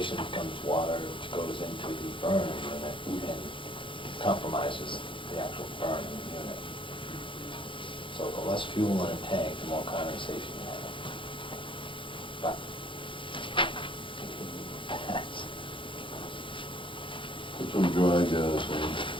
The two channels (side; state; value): right; late; 0.25 ms